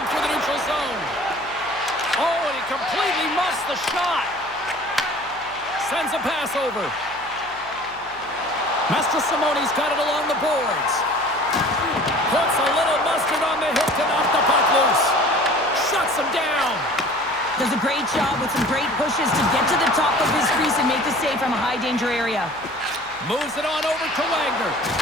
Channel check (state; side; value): noise; left; hum, 25 dB below the sound